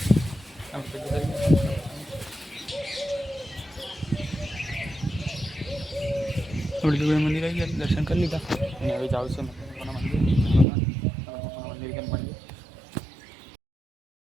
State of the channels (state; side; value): drops out; left; at 10.7 s